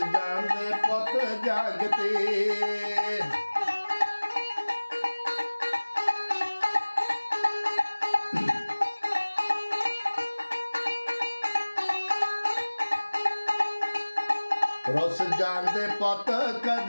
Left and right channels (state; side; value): inverted; both; correlation -1.00